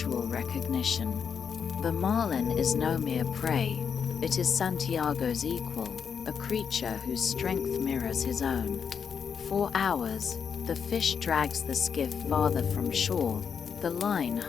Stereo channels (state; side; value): quieter; right; 6.9 dB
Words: recognition. The marlin is no mere prey, It is Santiago's equal, a creature whose strength mirrors his own. For hours, the fish drags the skiff farther from shore, the line